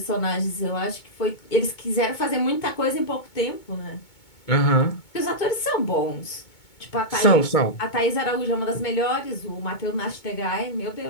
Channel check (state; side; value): late; right; 2.2 ms